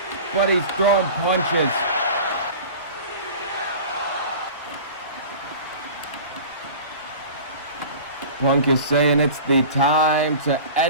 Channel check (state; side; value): inverted; both; correlation -0.38